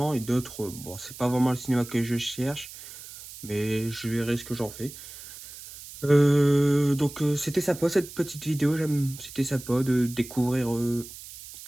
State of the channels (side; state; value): right; noise; hiss, 15 dB below the sound